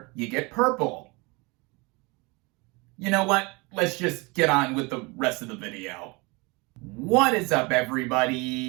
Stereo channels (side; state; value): left; quieter; 26.8 dB